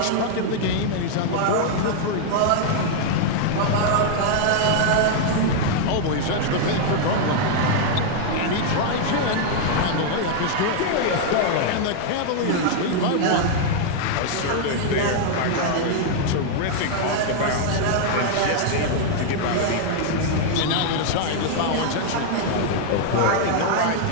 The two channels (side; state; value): both; different; correlation 0.00